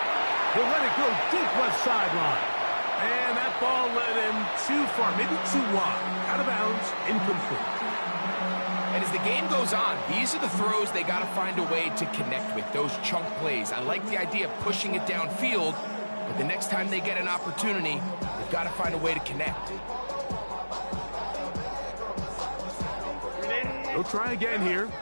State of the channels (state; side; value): inverted; both; correlation -1.00